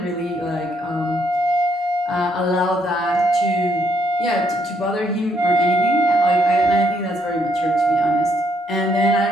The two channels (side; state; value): both; normal; correlation 0.72